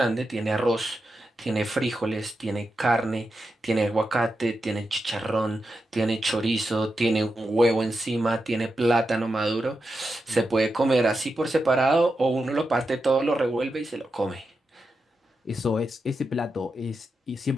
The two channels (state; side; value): normal; both; correlation 0.88